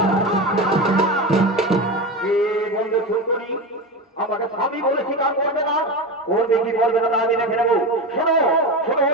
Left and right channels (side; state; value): both; normal; correlation 0.22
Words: আমাকে স্বামী বলে স্বীকার করবে না, করবে কি করবে না আমি দেখে নেবো। শোনো শোনো